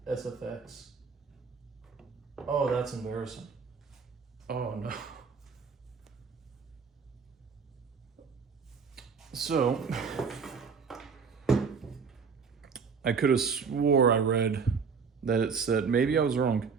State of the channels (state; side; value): quieter; left; 5.6 dB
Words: SFX. Oh, that's embarrassing. Oh no. So, I could have swore I read that it said, maybe I was wrong,